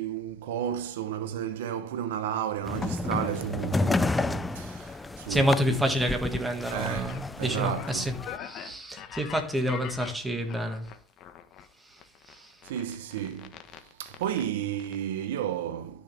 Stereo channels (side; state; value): both; normal; correlation 0.51